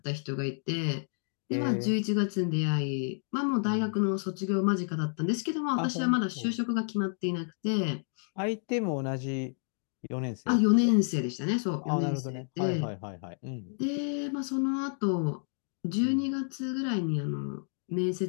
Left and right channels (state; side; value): silent; right; 58 dB below the other